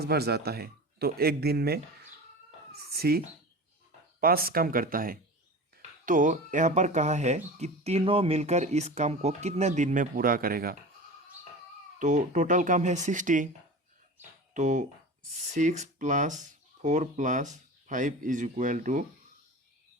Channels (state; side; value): normal; both; correlation 0.33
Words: बार जाता है, तो एक दिन में सी 5 काम करता है। तो यहाँ पर कहा है कि तीनों मिलकर इस काम को कितने दिन में पूरा करेगा। तो टोटल काम है 60, तो 6 + 4 + 5 =